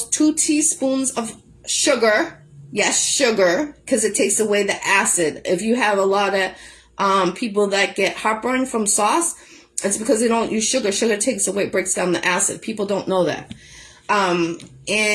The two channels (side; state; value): both; identical; correlation 1.00